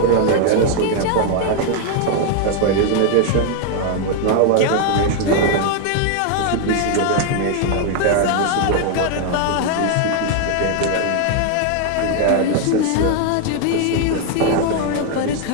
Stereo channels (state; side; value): different; both; correlation 0.00